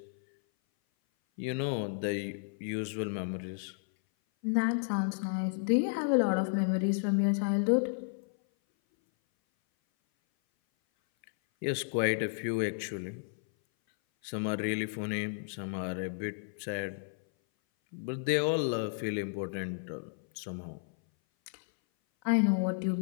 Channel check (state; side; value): silent; right; 56 dB below the other